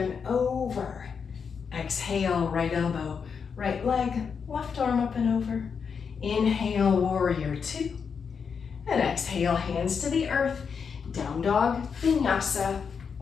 over. Exhale, right elbow, right leg, left arm up and over. Inhale, warrior two. And exhale, hands to the earth, down dog, vinyasa,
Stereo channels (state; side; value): quieter; right; 6.2 dB